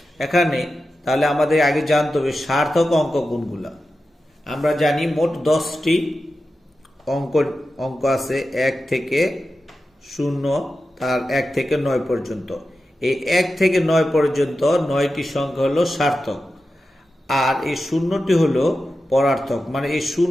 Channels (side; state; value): both; normal; correlation 0.92